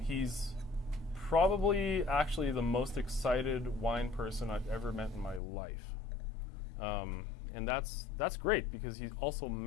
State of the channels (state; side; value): drops out; right; at 5.4 s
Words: He's probably actually the most excited wine person I've ever met in my life. And that's great because he also